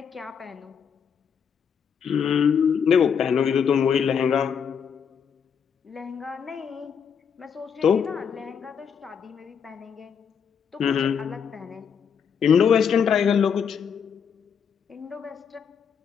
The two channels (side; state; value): right; quieter; 7.1 dB